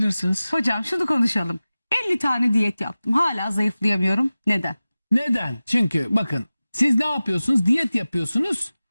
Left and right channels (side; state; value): both; inverted; correlation -0.96